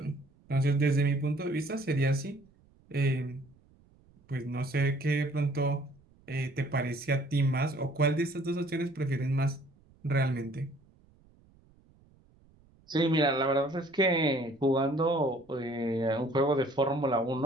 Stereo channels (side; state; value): right; noise; rumble, 30 dB below the sound